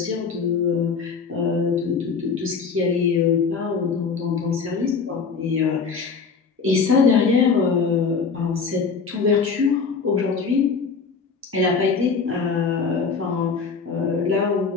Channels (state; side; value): quieter; right; 5.3 dB